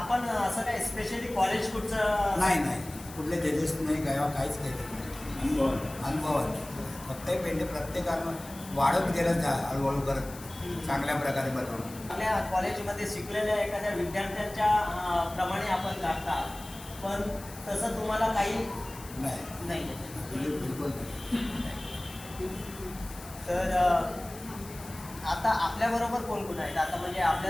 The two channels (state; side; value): noise; left; hiss, 16 dB below the sound